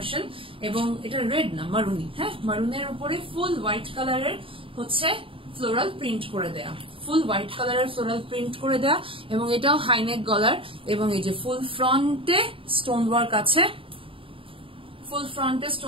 এবং এটা রেড না মারুনি। হ্যাঁ, মারুনের উপরে ফুল হোয়াইট কালারের হচ্ছে ফ্লোরাল প্রিন্ট করে দেয়া, ফুল হোয়াইট কালারের ফ্লোরাল প্রিন্ট করে দেয়া, এবং এটাও হাইনেক গলার, এবং এই যে ফুল ফ্রন্টে স্টোন ওয়ার্ক আছে, ফুল ফ্রন্টে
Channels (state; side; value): late; left; 0.26 ms